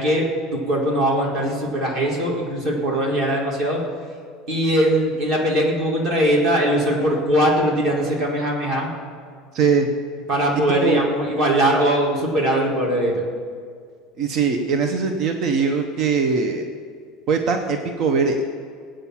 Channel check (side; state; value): both; normal; correlation 0.37